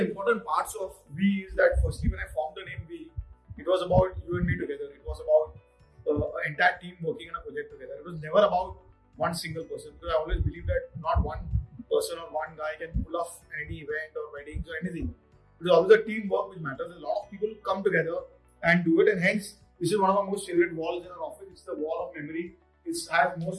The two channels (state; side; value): identical; both; correlation 1.00